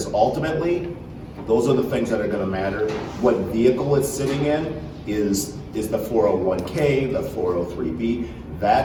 ultimately, those are the things that are gonna matter. What vehicle it's sitting in is the 401k, the 403b.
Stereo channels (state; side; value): identical; both; correlation 1.00